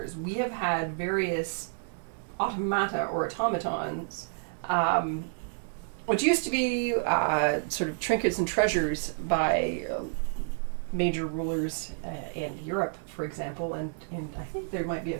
We have had various automata or automatons, which used to be sort of trinkets and treasures by major rulers in Europe, for example, and I think there might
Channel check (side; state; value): left; silent; digital silence